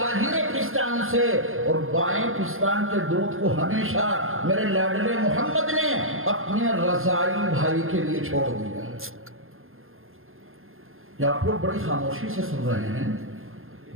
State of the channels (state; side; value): late; left; 0.60 ms